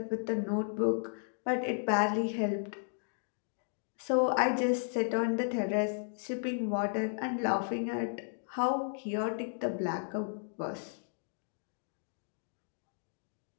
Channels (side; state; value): right; silent; digital silence